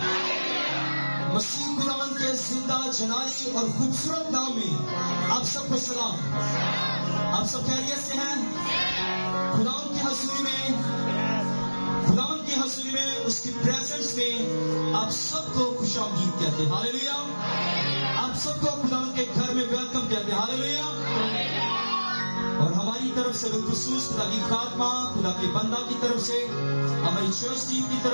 मसीह खुदावन के जिंदा जलाली और खूबसूरत नाम में आप सबको सलाम। आप सब खैरियत से हैं? खुदावन की हजूरी में उसकी प्रेजेंस में आप सबको खुशामदीद कहते हैं हालेलुया। आप सबको खुदावन के घर में वेलकम कहते हैं हालेलुया। और हमारी तरफ से बिलखुसूस खुदा की खात्मा, खुदा के बंदा की तरफ से, हमारी चर्च टीम की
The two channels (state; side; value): inverted; both; correlation -1.00